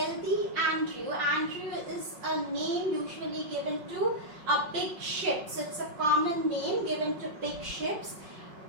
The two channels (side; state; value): left; late; 5.4 ms